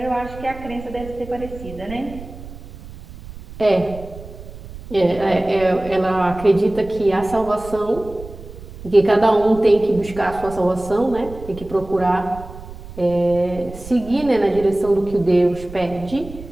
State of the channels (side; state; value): right; noise; rumble, 15 dB below the sound